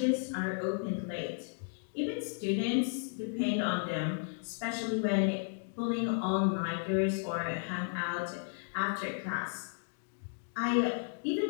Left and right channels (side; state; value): right; silent; digital silence